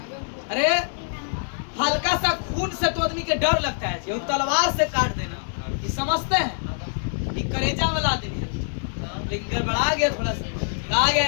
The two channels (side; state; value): right; silent; 62 dB below the other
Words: अरे हल्का सा खून से तो आदमी के डर लगता है जी, तलवार से काट देना ये समझते हैं, ये करेजा में ला देनी है। लेकिन गड़बड़ा गया थोड़ा सा, कहा गया